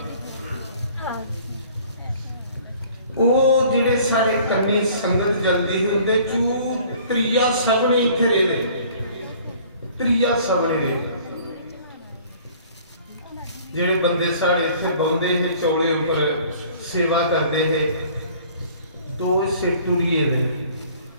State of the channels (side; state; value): both; inverted; correlation -0.52